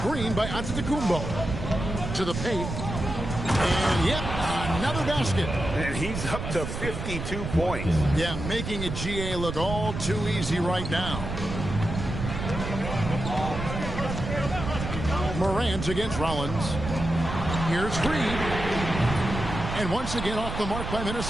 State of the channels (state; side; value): noise; right; rumble, 6 dB below the sound